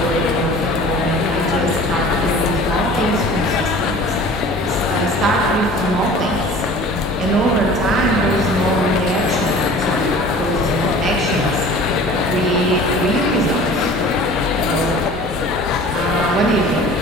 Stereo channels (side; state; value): both; normal; correlation 0.44